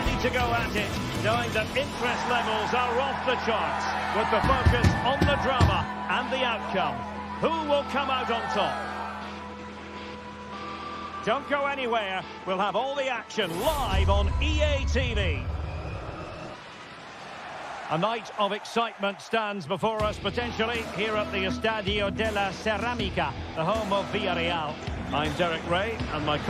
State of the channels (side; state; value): both; identical; correlation 1.00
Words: to go at it, knowing that interest levels are off the charts, with the focus on the drama and the outcome. Who will come out on top? Don't go anywhere. We'll have all the action live on EA TV. A night of excitement stands before us potentially here at the Estadio de la Ceramica, the home of Villarreal. I'm Derek Ray, and my